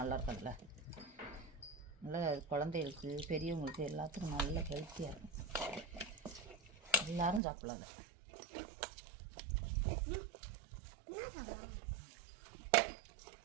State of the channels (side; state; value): left; drops out; at 7.4 s